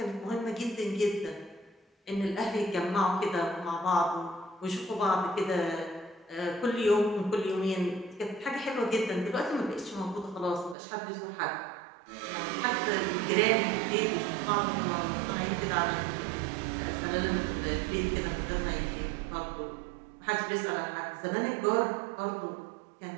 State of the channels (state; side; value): drops out; left; at 10.8 s